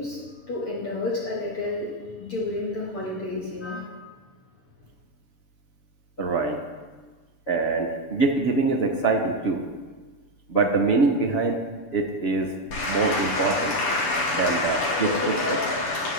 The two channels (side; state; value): right; late; 6.9 ms